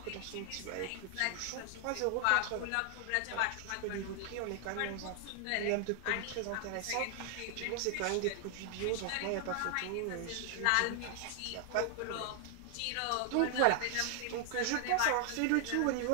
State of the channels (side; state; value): both; different; correlation 0.00